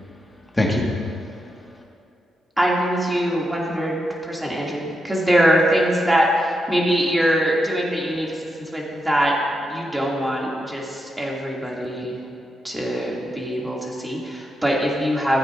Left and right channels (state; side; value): normal; both; correlation 0.85